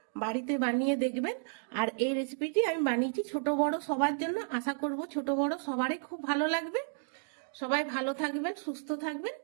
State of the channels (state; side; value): silent; left; digital silence